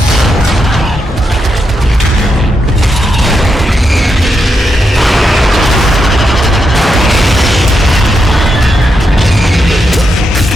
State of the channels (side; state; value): both; normal; correlation 0.84